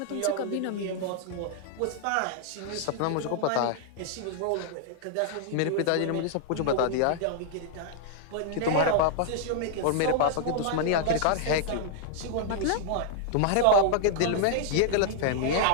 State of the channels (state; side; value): different; both; correlation -0.01